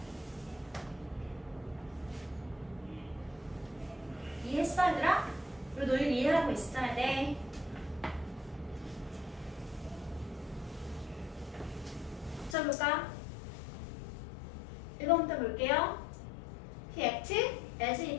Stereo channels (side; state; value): right; drops out; at 12.6 s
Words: 이해했어 얘들아? 이 논리 이해하고 있어야 돼. 자 볼까? 1번부터 볼게요. He acted as